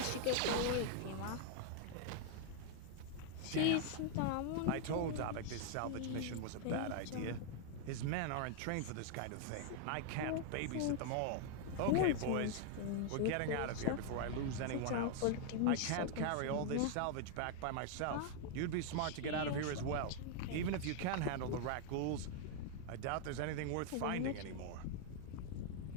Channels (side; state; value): both; different; correlation 0.00